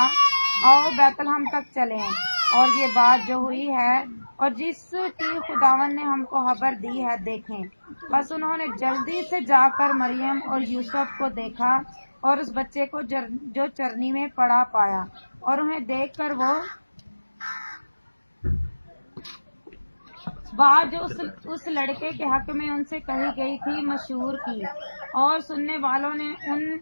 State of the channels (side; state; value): both; inverted; correlation -1.00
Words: آؤ بیت لحم تک چلیں اور یہ بات جو ہوئی ہے اور جس کی خداوند نے ہم کو خبر دی ہے دیکھیں۔ بس انہوں نے جلدی سے جا کر مریم اور یوسف کو دیکھا اور اس بچے کو جو چرنی میں پڑا پایا، اور انہیں دیکھ کر وہ بات جو اس لڑکے کے حق میں ان سے کہی گئی تھی مشہور کی، اور سننے والوں نے ان